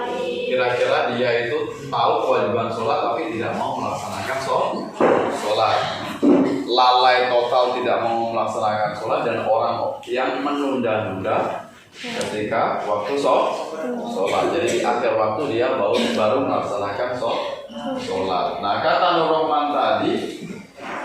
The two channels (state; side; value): identical; both; correlation 1.00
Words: kira-kira dia itu tahu kewajiban sholat tapi tidak mau melaksanakan sholat. Lalai total tidak mau melaksanakan sholat, dan orang yang menunda-nunda ketika waktu sholat. Jadi di akhir waktu dia baru melaksanakan sholat. Nah, kata Nur Rahman tadi